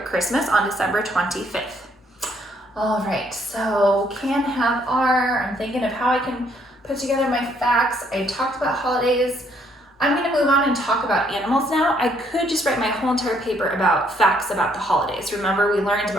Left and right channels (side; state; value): both; normal; correlation 0.68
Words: Christmas on December 25th. All right, so can, have, are. I'm thinking of how I can put together my facts. I talked about holidays. I'm gonna move on and talk about animals now. I could just write my whole entire paper about facts about the holidays. Remember, we learned